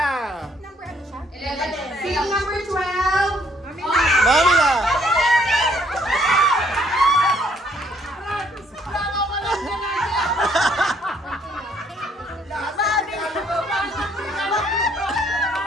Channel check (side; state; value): both; normal; correlation 0.66